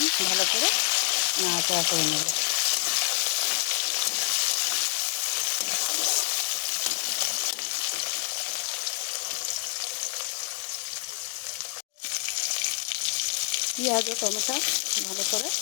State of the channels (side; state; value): right; silent; 60 dB below the other